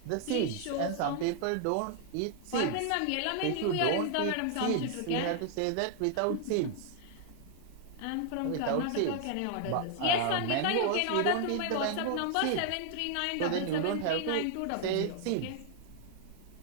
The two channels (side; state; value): both; different; correlation 0.00